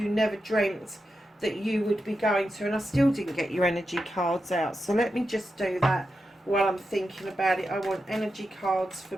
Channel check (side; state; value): both; normal; correlation 0.88